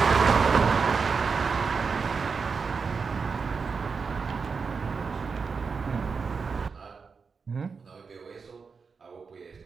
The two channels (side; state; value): left; quieter; 5.2 dB